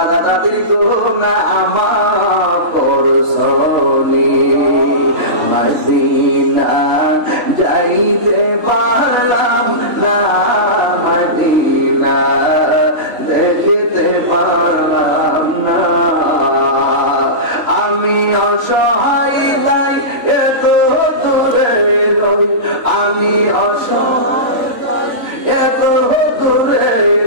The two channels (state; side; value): late; left; 3.5 ms